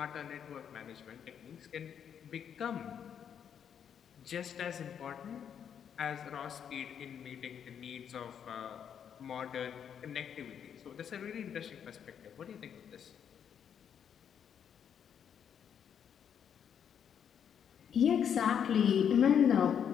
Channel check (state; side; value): quieter; right; 8.3 dB